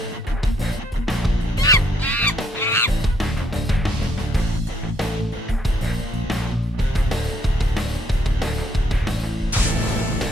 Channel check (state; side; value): normal; both; correlation 0.71